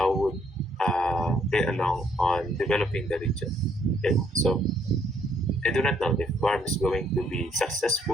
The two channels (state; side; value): normal; both; correlation 0.68